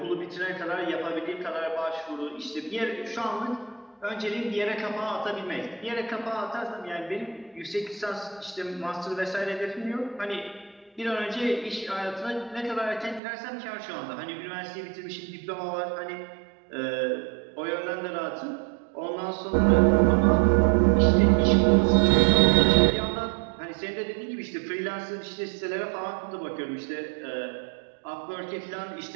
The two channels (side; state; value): left; drops out; at 13.2 s